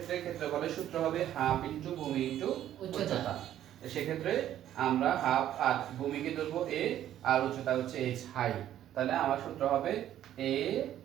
ক্ষেত্রফলের সূত্র হবে হাফ ইনটু ভূমি ইনটু উচ্চতা। সেক্ষেত্রে আমরা হাফ আর ভূমিকে ধরবো এ আর উচ্চতা হচ্ছে এইচ হাই, তাহলে আমার সূত্র হবে A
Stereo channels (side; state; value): left; quieter; 11.7 dB